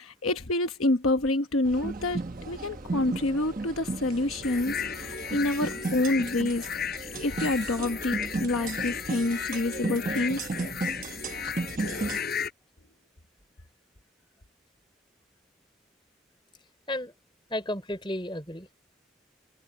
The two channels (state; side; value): normal; both; correlation 0.48